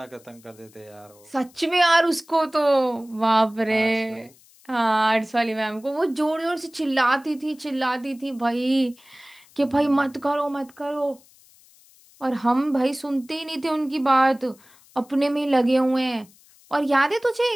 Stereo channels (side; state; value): left; noise; hiss, 28 dB below the sound